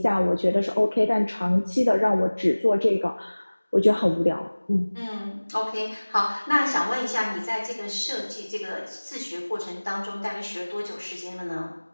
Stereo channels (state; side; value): inverted; both; correlation -1.00